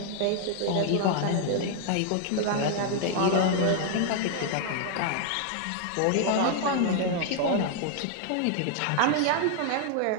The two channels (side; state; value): both; different; correlation 0.00